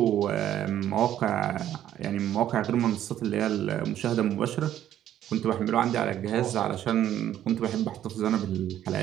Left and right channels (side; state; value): left; quieter; 11.5 dB